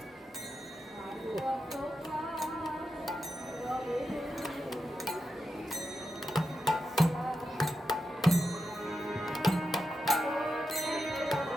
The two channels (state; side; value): normal; both; correlation 0.88